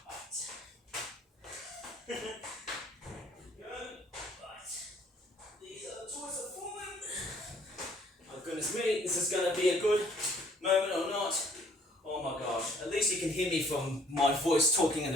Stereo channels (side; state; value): both; normal; correlation 0.60